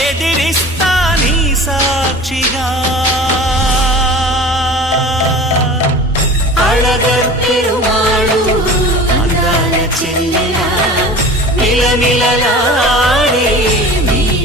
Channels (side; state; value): both; normal; correlation 0.38